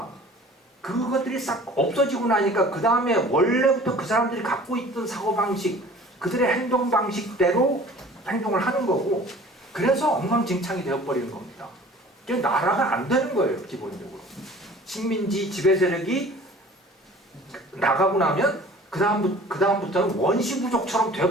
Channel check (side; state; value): both; normal; correlation 0.47